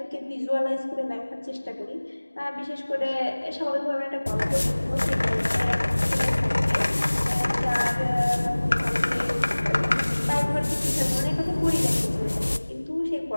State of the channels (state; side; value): inverted; both; correlation -1.00